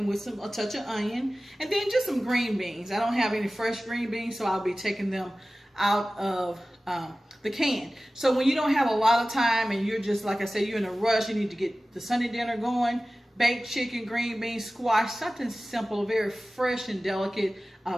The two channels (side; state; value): both; normal; correlation 0.96